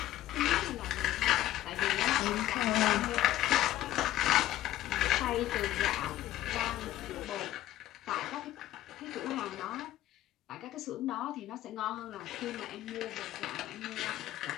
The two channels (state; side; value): quieter; right; 14.1 dB